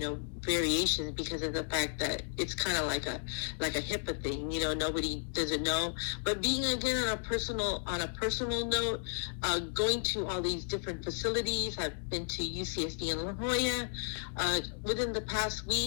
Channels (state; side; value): silent; right; digital silence